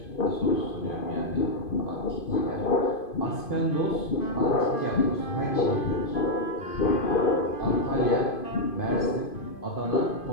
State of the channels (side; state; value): right; late; 2.5 ms